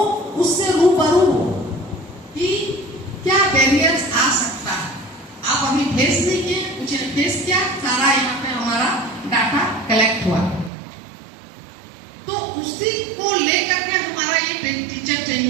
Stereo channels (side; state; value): left; drops out; at 10.7 s